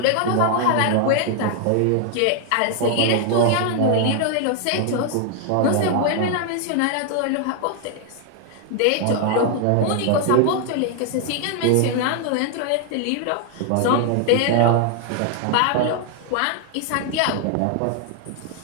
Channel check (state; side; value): different; both; correlation 0.00